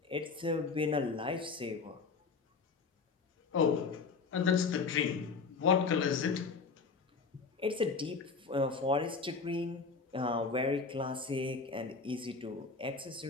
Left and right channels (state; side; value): quieter; right; 4.8 dB